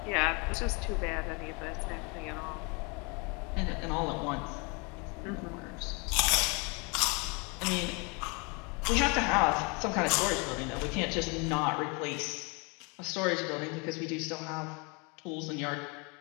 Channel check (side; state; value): right; quieter; 31.2 dB